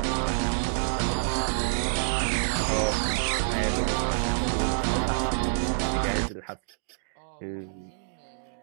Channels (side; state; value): left; silent; digital silence